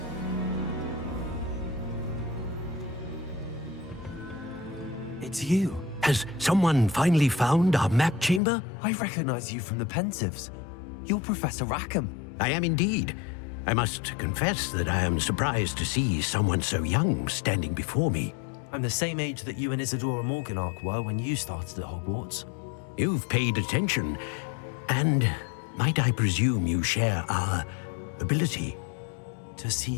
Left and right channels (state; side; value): drops out; right; at 8.4 s